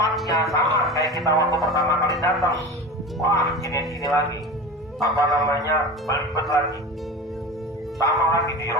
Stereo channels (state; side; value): normal; both; correlation 0.31